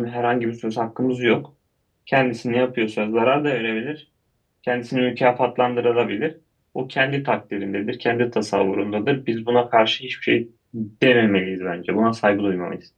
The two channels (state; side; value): identical; both; correlation 1.00